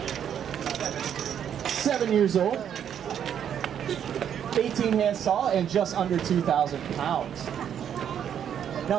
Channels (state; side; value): quieter; left; 9.0 dB